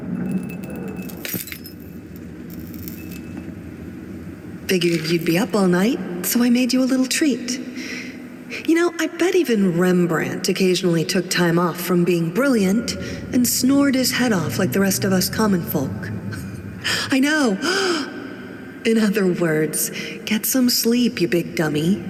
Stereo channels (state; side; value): identical; both; correlation 1.00